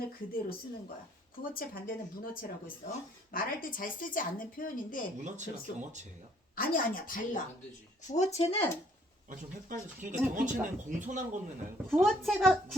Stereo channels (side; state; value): both; normal; correlation 0.64